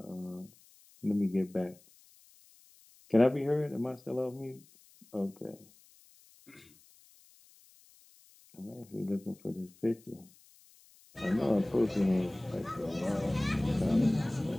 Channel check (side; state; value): left; noise; hiss, 27 dB below the sound